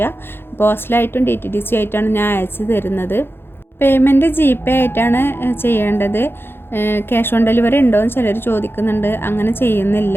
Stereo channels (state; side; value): late; right; 0.11 ms